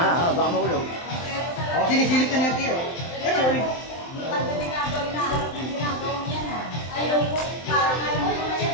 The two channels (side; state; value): right; late; 23 ms